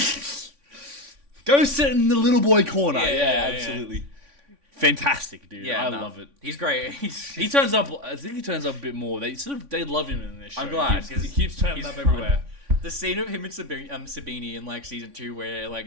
Go sit in the little boy corner. Yeah, absolutely. Fantastic, dude. I love it. He's great. He turns up. I think he turns up a bit more. They love him in this show. I'm glad because he keeps turning up everywhere. The scene of him and Sabini in like season 2, where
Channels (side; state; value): left; late; 3.5 ms